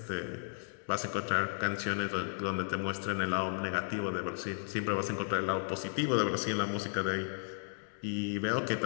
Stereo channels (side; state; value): right; silent; digital silence